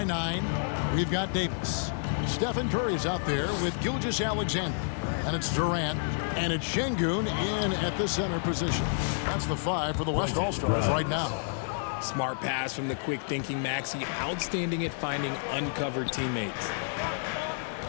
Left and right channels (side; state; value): right; silent; digital silence